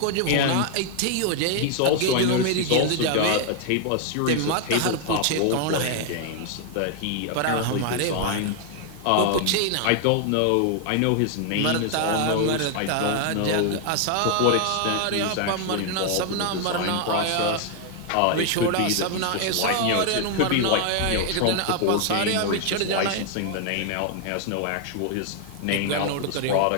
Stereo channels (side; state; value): both; different; correlation 0.00